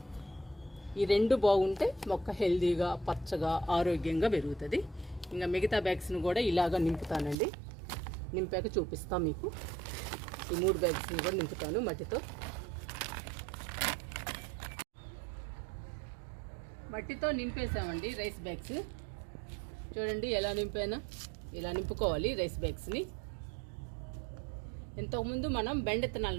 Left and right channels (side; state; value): left; drops out; at 7.4 s